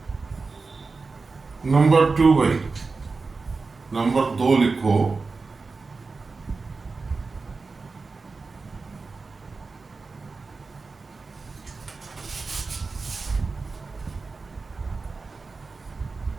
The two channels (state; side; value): quieter; left; 4.1 dB